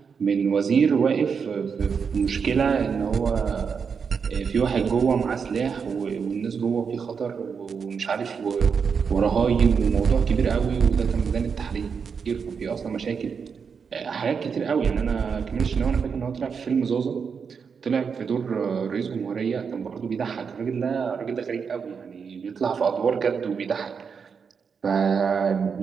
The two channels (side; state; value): left; quieter; 6.1 dB